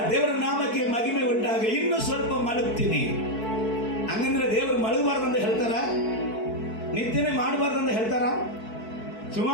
ದೇವರ ನಾಮಕ್ಕೆ ಮಹಿಮೆ ಉಂಟಾಗ. ಇನ್ನು ಸ್ವಲ್ಪ ಮಲಗ್ತೀನಿ ಹಂಗಂದ್ರೆ ದೇವರು ಮಲಗಬಾರ್ದಂತ ಹೇಳ್ತಾರ? ನಿದ್ದೆನೆ ಮಾಡಬಾರ್ದಂತ ಹೇಳ್ತಾರ?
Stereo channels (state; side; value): late; right; 4.6 ms